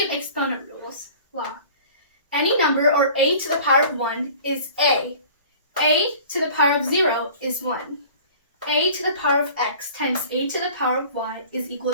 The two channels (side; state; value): both; inverted; correlation -0.46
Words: exponent rules. Law. Any number or a to the power of 1 is a. A to the power of 0 is 1. A to the power of x times a to the power of y is equal